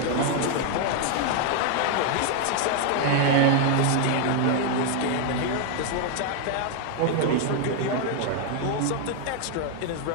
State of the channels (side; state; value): both; different; correlation 0.00